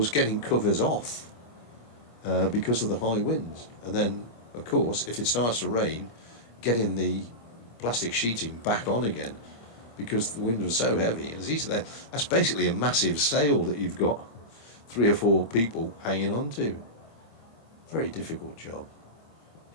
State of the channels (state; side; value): late; right; 26 ms